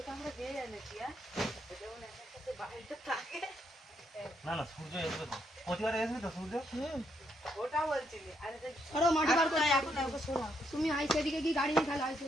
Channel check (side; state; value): both; normal; correlation 0.76